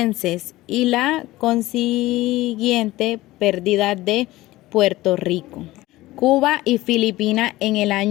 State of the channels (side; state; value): right; quieter; 17.8 dB